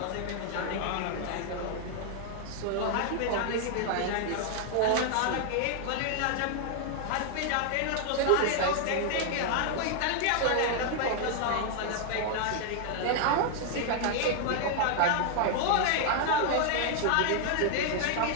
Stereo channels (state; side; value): different; both; correlation 0.00